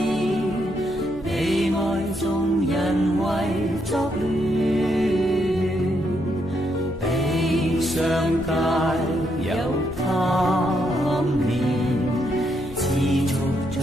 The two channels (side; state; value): left; noise; hum, 16 dB below the sound